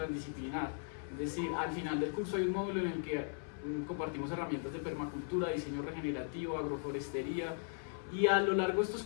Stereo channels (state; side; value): silent; right; 53 dB below the other